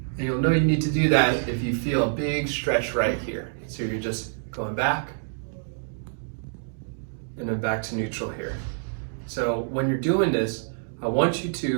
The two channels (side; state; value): left; silent; digital silence